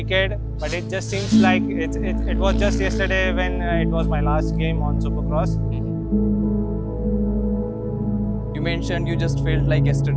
but it just seems like it was just yesterday when it was my last game on Supercross. You mentioned you just felt like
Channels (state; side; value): identical; both; correlation 1.00